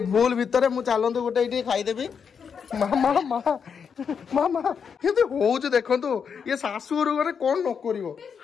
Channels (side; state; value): right; quieter; 6.6 dB